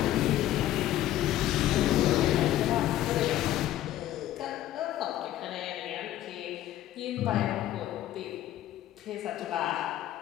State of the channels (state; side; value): quieter; right; 13.3 dB